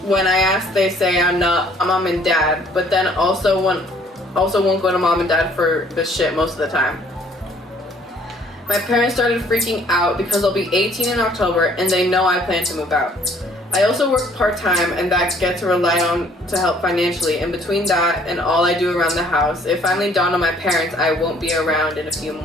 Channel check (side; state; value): both; normal; correlation 0.60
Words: When I ask, they say I'm not a mom and dad, but then also won't go to mom and dad for this shit most of the time. My parents started freaking out because I'll be 18 in October and they know I plan to move out. I also work part-time and that gets relied on to help financially. In between that and all I do around the house, it finally dawned on my parents I won't be around in a few